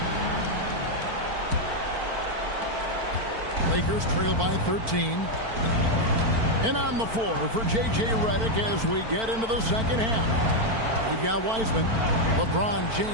Lakers trail by 13. And on the floor for J.J. Redick as we get into the second half. We've got Wiseman. LeBron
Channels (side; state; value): left; late; 4.5 ms